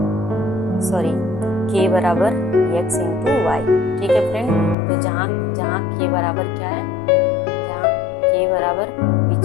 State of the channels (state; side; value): drops out; right; at 4.8 s